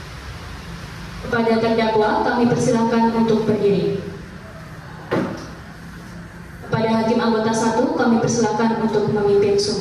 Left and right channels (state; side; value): identical; both; correlation 1.00